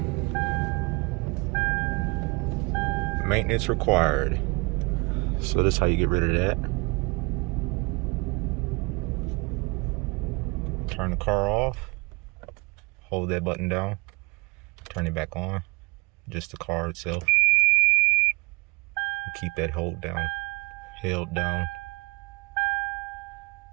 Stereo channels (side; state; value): left; quieter; 27.9 dB